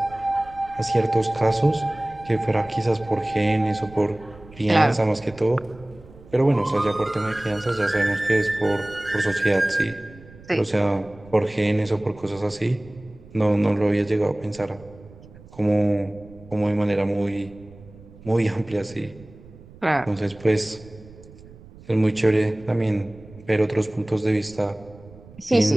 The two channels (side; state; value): right; noise; rumble, 21 dB below the sound